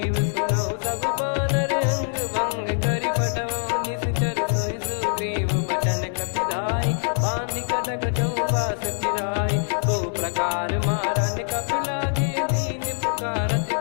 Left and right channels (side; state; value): right; silent; 63 dB below the other